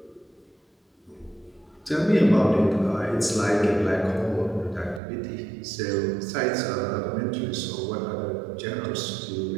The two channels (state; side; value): drops out; left; at 5.0 s